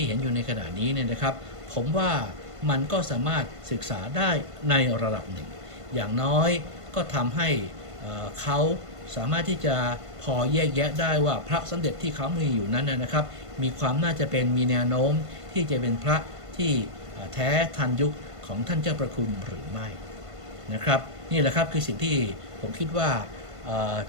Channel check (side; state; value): left; late; 1.5 ms